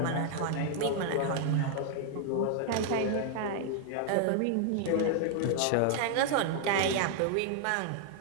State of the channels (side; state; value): both; different; correlation 0.00